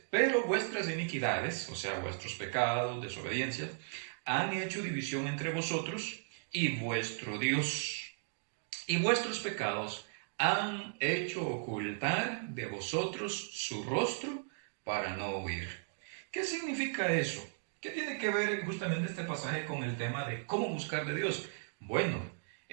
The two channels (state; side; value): silent; left; digital silence